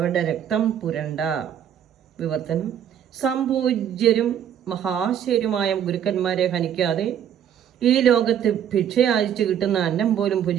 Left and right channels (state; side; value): quieter; left; 9.4 dB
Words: രക്തം പുരണ്ട. വിവർത്തനം: സംപൂജ്യരും മഹാശയരുമായ ഗുരുക്കന്മാരെ ഹനിക്കാതെ ഈ ലോകത്ത് ഭിക്ഷയാചിച്ചു കിട്ടുന്ന അന്നം പോലും